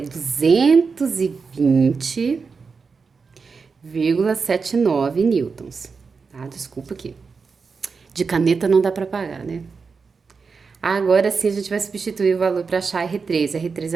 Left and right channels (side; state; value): left; quieter; 5.0 dB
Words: 220 0,79 newtons, tá? Desculpa aqui. De caneta não dá para pagar, né? Agora sim a gente vai substituir o valor para achar R3. A R3